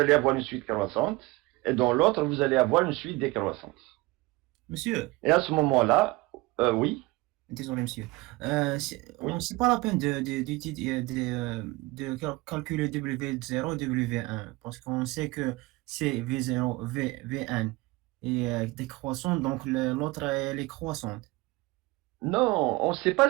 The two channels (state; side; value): quieter; left; 22.3 dB